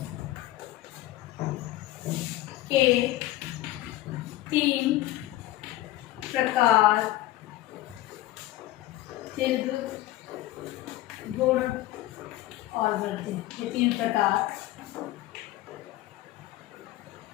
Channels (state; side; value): quieter; right; 16.0 dB